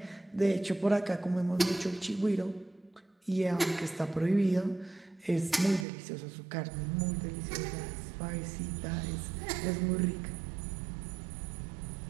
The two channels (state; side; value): drops out; left; at 5.9 s